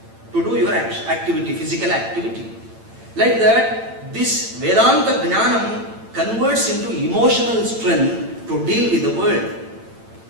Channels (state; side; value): late; left; 8.9 ms